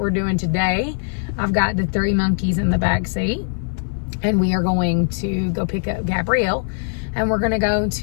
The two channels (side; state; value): right; silent; 57 dB below the other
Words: doing today. I've got the 3 monkeys in the back seat, and we are going to go pick up Gabrielle, and we're going to go